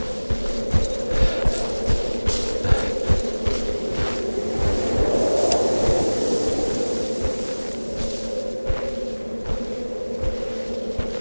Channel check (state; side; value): inverted; both; correlation -1.00